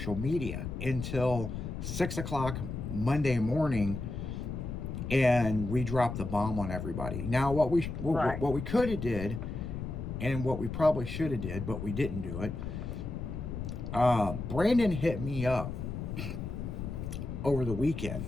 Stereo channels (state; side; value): noise; left; rumble, 6 dB below the sound